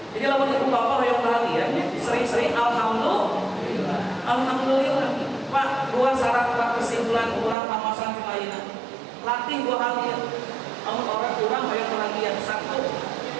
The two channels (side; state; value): left; drops out; at 7.6 s